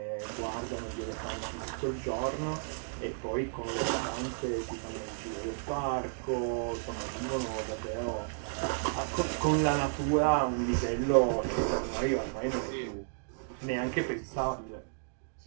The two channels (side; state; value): left; silent; digital silence